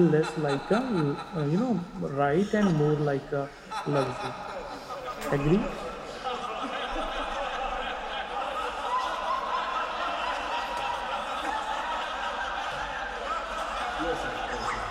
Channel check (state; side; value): identical; both; correlation 1.00